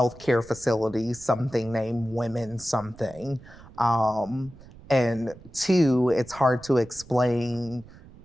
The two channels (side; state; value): right; noise; rumble, 20 dB below the sound